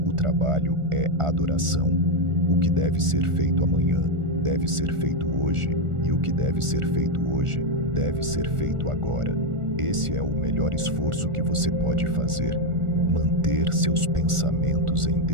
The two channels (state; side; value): late; left; 1.4 ms